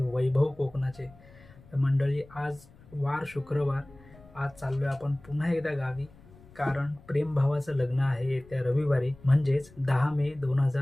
कोकणाचे. तर मंडळी, आज वार शुक्रवार. आज चाललो आहे आपण पुन्हा एकदा गावी, कारण प्रेम भावाचं लग्न आहे येत्या रविवारी, म्हणजेच 10 मे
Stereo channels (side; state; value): left; noise; rumble, 24 dB below the sound